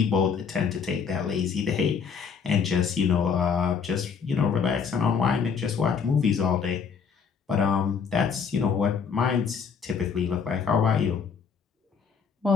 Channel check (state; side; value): quieter; right; 6.2 dB